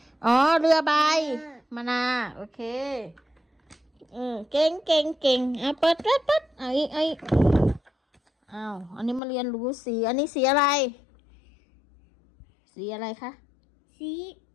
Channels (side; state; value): right; drops out; at 9.2 s